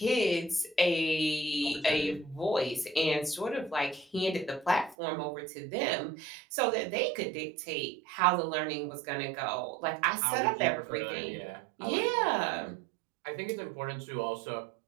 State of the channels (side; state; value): left; drops out; at 5.0 s